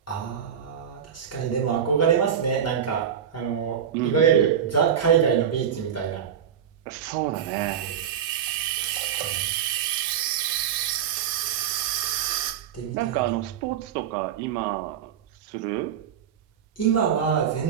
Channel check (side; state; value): left; quieter; 8.6 dB